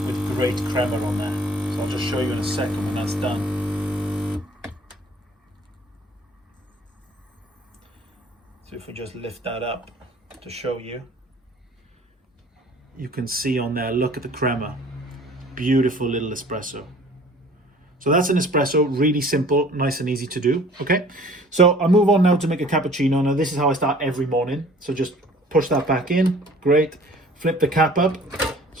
with great crema on there. So I'll just show you in a second when that's done. So if we just lift that up to show you, you can see on there, look at the crema. Beautiful little espresso. So that's an espresso, really simple, nice and easy to do, okay? So I'll move on now to make a cappuccino. Now this is how I start every morning. So just push that back in, great. Flip the cap up,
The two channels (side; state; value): both; normal; correlation 0.51